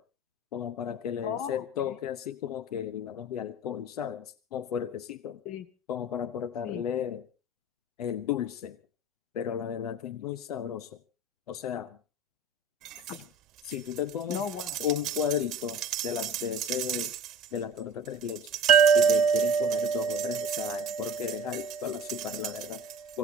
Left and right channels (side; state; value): both; normal; correlation 0.40